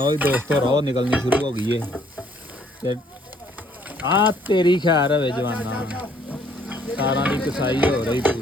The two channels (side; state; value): both; normal; correlation 0.63